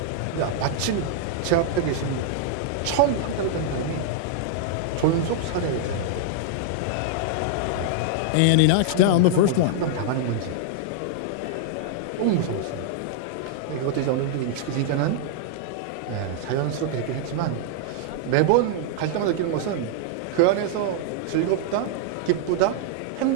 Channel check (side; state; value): both; different; correlation -0.01